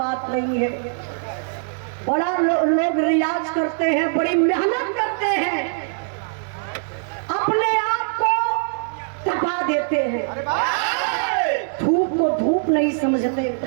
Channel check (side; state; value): left; silent; digital silence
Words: नहीं है। बड़ा लोग रियाज करते हैं, बड़ी मेहनत करते हैं, अपने आप को तपा देते हैं। धूप को धूप नहीं समझते,